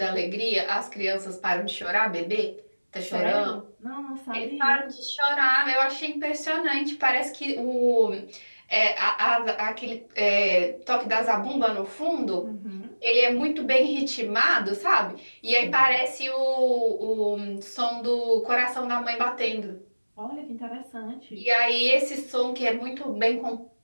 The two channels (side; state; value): both; inverted; correlation -1.00